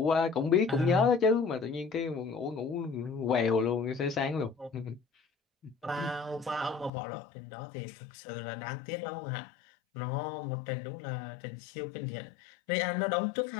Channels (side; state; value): right; drops out; at 6.9 s